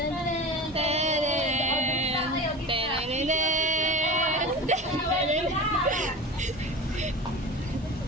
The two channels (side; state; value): both; normal; correlation 0.32